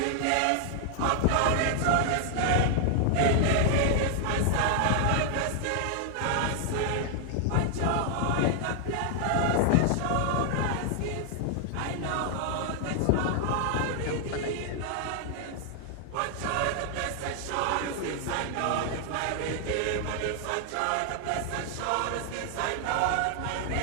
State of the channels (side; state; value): both; different; correlation 0.00